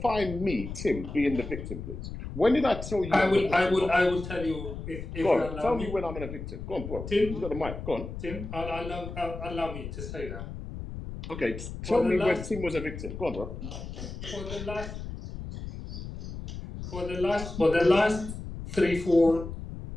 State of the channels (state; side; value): noise; left; rumble, 9 dB below the sound